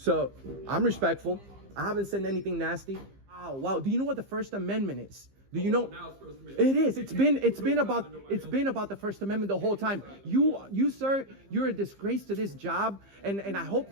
I'm respectful. I haven't said anything nasty. Wow. Do you know what the First Amendment is? Do you know? Now it's First Amendment. It is. It's been about the First Amendment the whole time. You sir, you're a disgrace to this job, and I hope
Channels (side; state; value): left; late; 15 ms